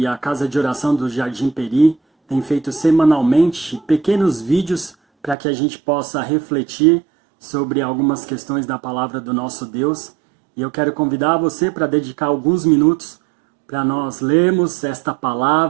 a Casa de Oração do Jardim Peri tem feito semanalmente pequenos vídeos para que a gente possa refletir sobre algumas questões da palavra do nosso Deus. E eu quero convidar você para dedicar alguns minutos para nós lermos esta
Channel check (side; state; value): left; drops out; at 5.4 s